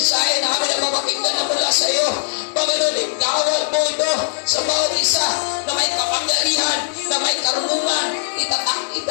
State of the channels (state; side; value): silent; right; digital silence